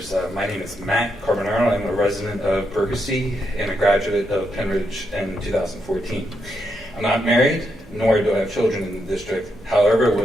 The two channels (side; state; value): both; normal; correlation 0.81